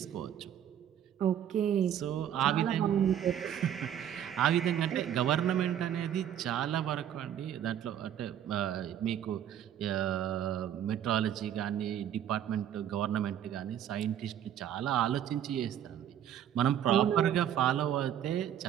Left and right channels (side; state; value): left; quieter; 10.2 dB